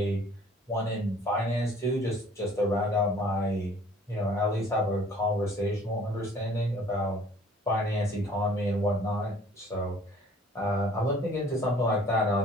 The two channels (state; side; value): normal; both; correlation 0.54